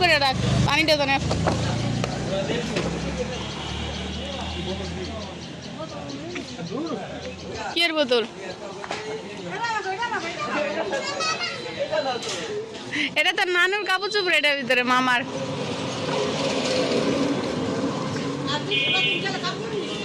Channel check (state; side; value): identical; both; correlation 1.00